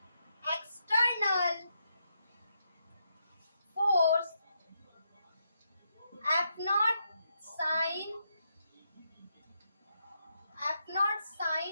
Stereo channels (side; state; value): both; inverted; correlation -0.81